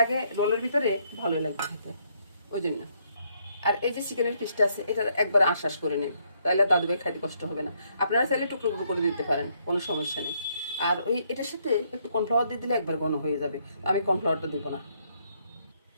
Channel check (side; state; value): both; inverted; correlation -0.72